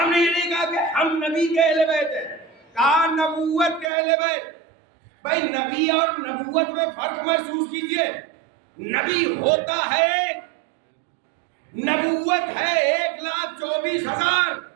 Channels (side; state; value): left; drops out; at 3.9 s